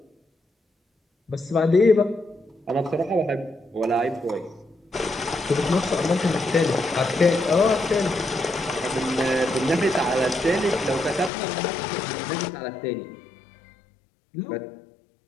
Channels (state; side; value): drops out; right; at 11.3 s